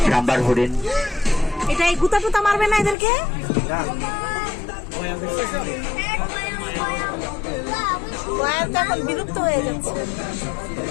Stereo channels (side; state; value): right; drops out; at 3.0 s